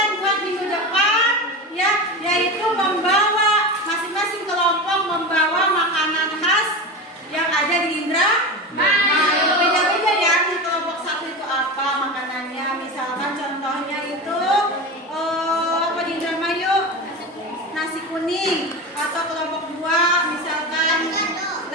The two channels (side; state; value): both; normal; correlation 0.24